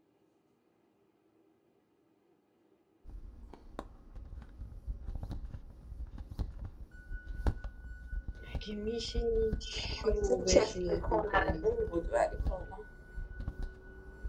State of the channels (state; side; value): identical; both; correlation 1.00